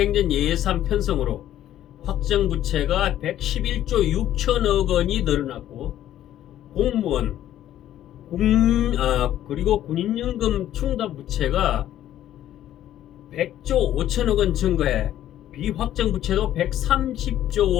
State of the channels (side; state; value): right; quieter; 12.2 dB